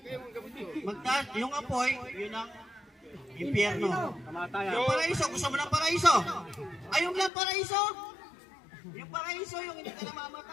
Magtaas, yung apoy, yun ang impyerno. Yung paraiso, gusto mo ng paraiso? Ayaw mo ng paraiso? Yung paraiso, yung hindi ka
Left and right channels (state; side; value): drops out; right; at 7.3 s